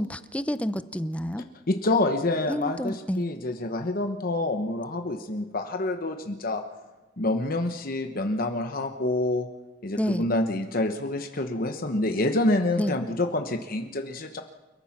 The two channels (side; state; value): both; normal; correlation 0.41